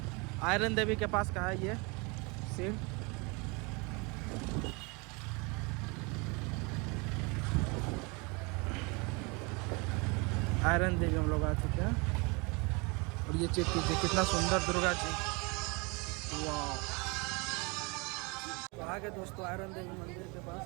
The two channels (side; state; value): left; quieter; 29.2 dB